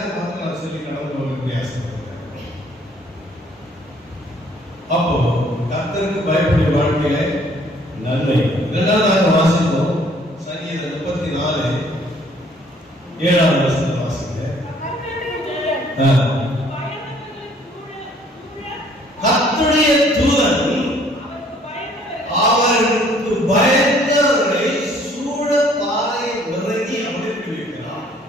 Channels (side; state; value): both; normal; correlation 0.60